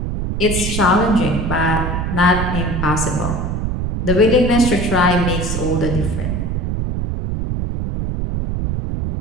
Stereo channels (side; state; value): right; noise; rumble, 2 dB below the sound